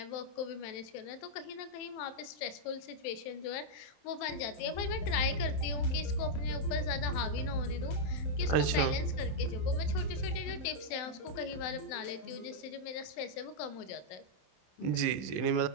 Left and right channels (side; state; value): right; late; 27 ms